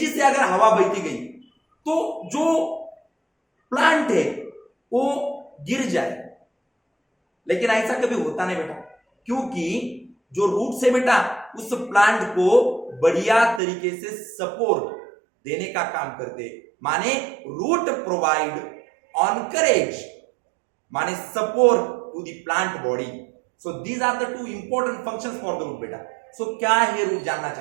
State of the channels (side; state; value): left; drops out; at 13.6 s